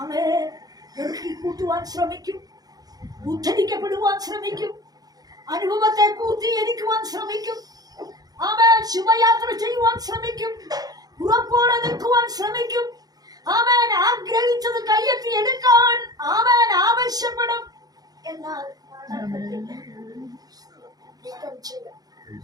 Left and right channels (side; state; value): left; late; 0.19 ms